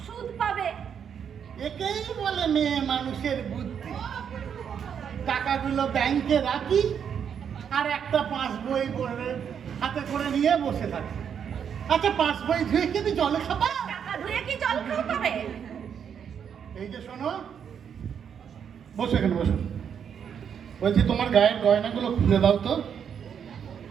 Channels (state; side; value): quieter; left; 7.8 dB